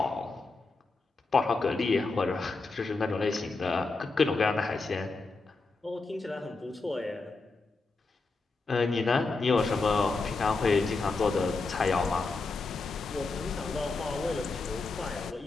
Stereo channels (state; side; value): quieter; right; 3.8 dB